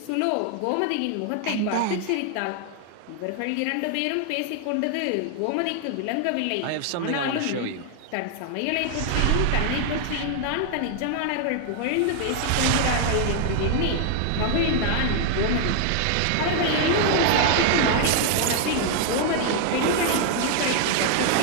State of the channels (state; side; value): different; both; correlation 0.00